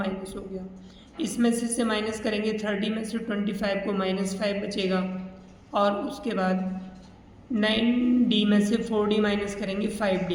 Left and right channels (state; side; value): identical; both; correlation 1.00